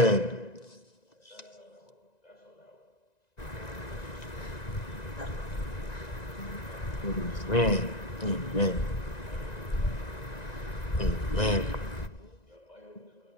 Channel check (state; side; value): late; right; 1.9 ms